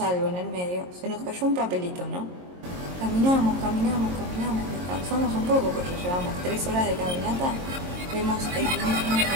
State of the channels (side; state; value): left; late; 22 ms